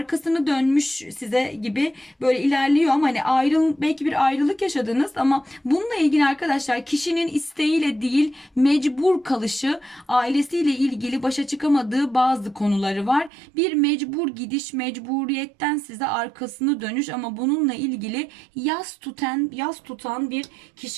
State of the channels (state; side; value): drops out; left; at 13.3 s